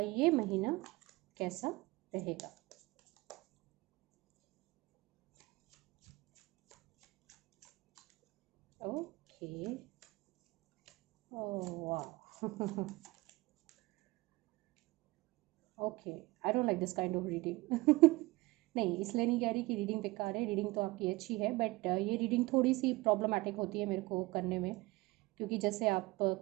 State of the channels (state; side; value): quieter; left; 21.3 dB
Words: महीना कैसा रहेगा। ओके, वाह okay, I don't like this kind of reading. नहीं, इसलिए नहीं कह रही कि रीडिंग बेकार है, रीडिंग तो आपकी अच्छी है, बट ये रीडिंग थोड़ी सी प्रॉब्लमेटिक होती है मेरे को करने में, क्योंकि जैसे आप